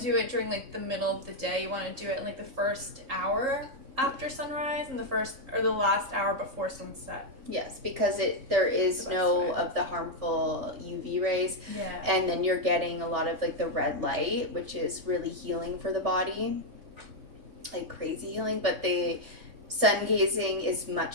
it during like the middle of the day. You want to do it in like the first hour after sunrise and the last hour before sunset. Yes, because there is no of the harmful UV rays. Yeah. And then you're getting a lot of like the red light, which is really healing for the body. Like crazy healing, but the sun gazing is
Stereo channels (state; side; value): late; left; 3.4 ms